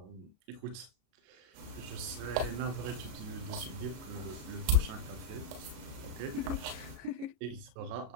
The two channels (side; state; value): left; late; 33 ms